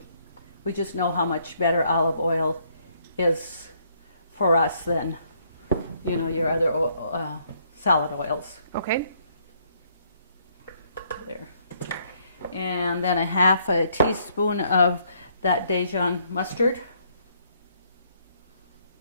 we just know how much better olive oil is for us than, your other salad oils. Okay. There. And then a 1/2 teaspoon of that Dijon mustard.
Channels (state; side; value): inverted; both; correlation -0.69